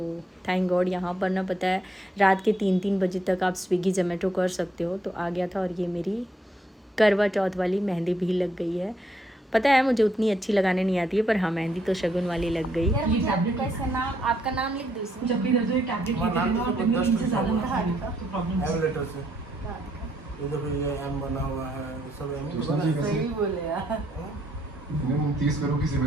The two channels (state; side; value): normal; both; correlation 0.74